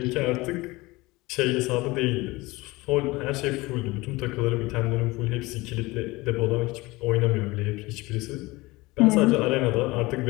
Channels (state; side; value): quieter; right; 21.7 dB